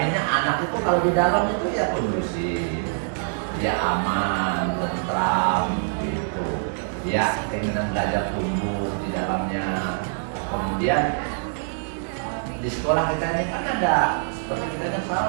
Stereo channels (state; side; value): silent; left; 62 dB below the other